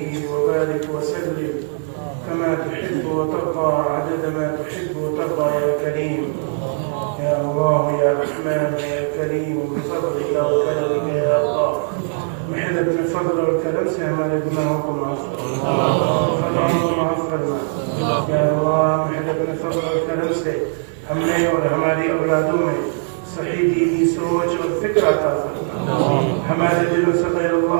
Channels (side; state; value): left; silent; 63 dB below the other